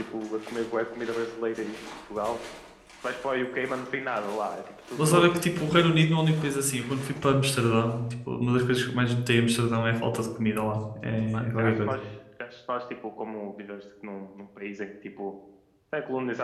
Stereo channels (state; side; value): identical; both; correlation 1.00